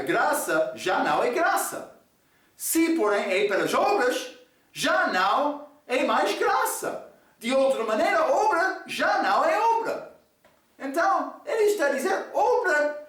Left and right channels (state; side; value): identical; both; correlation 1.00